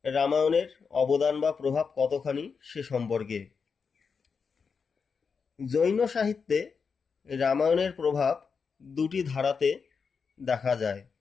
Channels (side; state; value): right; quieter; 5.6 dB